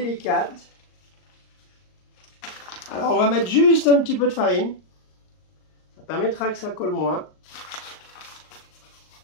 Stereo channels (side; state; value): right; late; 38 ms